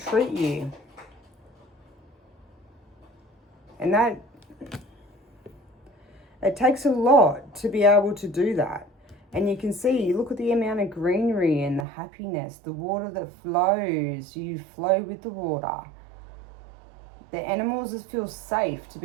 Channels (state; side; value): drops out; left; at 11.9 s